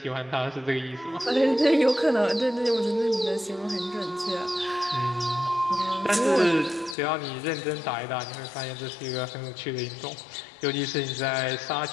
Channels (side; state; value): right; drops out; at 7.0 s